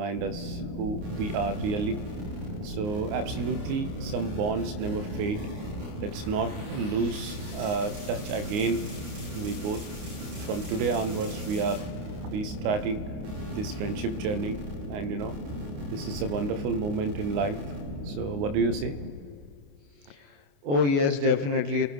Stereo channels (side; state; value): left; late; 29 ms